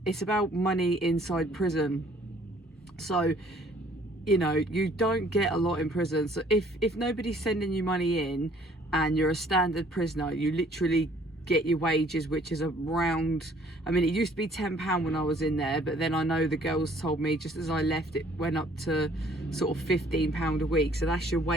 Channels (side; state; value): both; normal; correlation 0.59